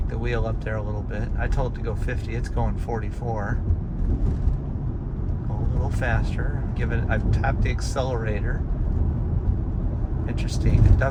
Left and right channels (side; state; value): both; identical; correlation 1.00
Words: the wheel up there a little bit. I told it to go 50, it's going 44. A little faster. I've tapped the accelerator. Interesting. It